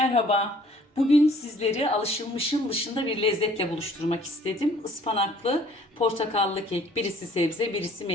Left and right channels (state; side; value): normal; both; correlation 0.56